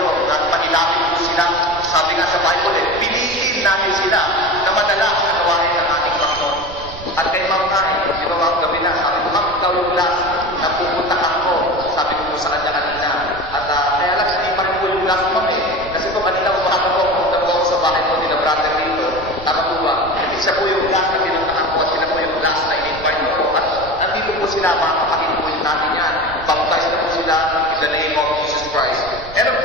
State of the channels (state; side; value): noise; right; rumble, 15 dB below the sound